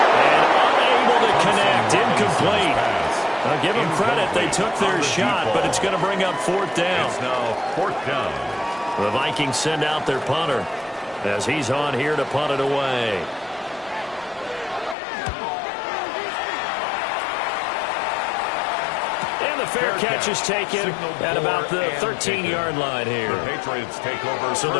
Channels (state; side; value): drops out; right; at 15.0 s